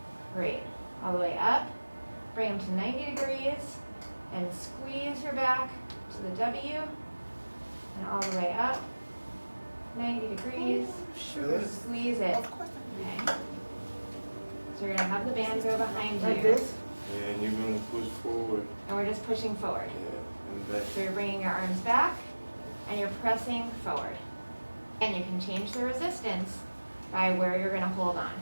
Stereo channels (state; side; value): inverted; both; correlation -1.00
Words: Great. All the way up, bring them to 90 degrees and squeeze your back to the W and all the way up, 90 degrees, Sure. squeeze it. Okay. So you're gonna have the band go behind you. Like this? Yeah, and you're gonna push forward. And we're just pushing forward. Yeah, and back. So you're bringing your arms back and you're pressing forward. And you can change the resistance by where you're gonna hold on.